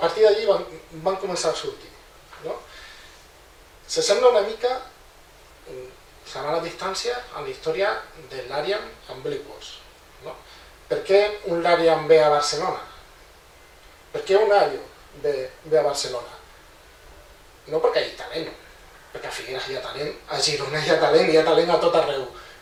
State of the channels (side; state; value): both; identical; correlation 1.00